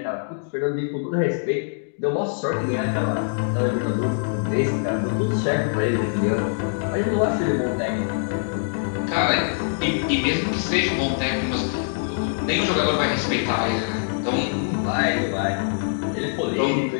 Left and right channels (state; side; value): silent; right; digital silence